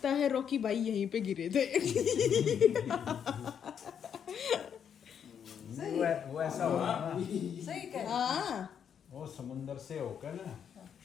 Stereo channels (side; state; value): right; quieter; 8.1 dB